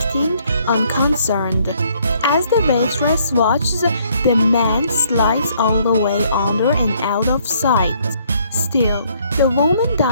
unconcerned. As the waitress watches, the man slides all the way under and out of sight. Still, the woman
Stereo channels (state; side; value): inverted; both; correlation -0.66